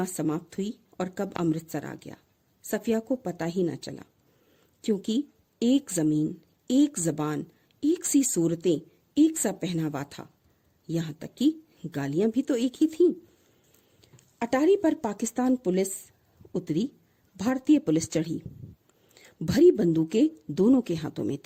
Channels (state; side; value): identical; both; correlation 1.00